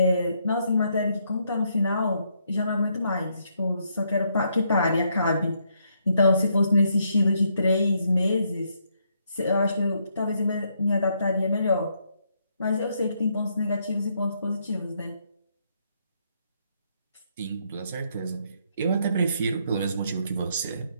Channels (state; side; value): inverted; both; correlation -0.75